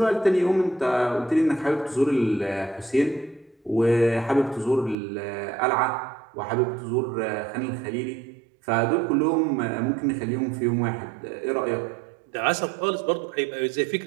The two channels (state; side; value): drops out; left; at 5.0 s